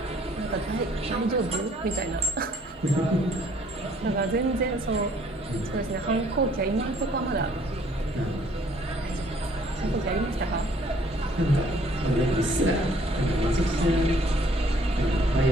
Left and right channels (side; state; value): both; normal; correlation 0.61